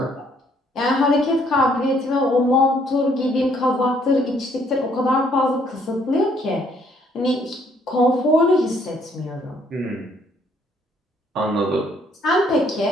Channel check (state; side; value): normal; both; correlation 0.66